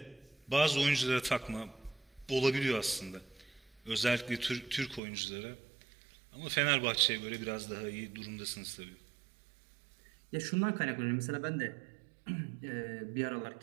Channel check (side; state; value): left; drops out; at 5.0 s